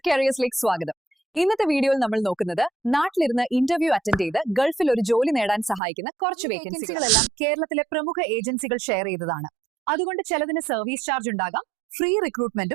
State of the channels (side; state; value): left; drops out; at 5.8 s